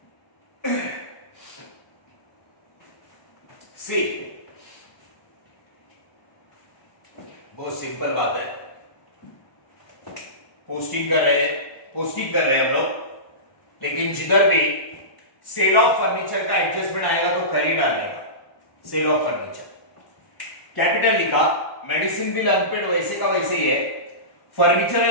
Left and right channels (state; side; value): late; right; 1.1 ms